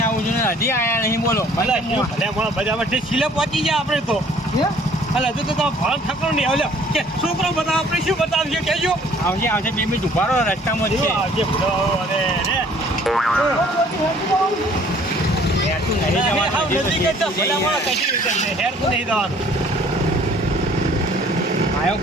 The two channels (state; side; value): normal; both; correlation 0.56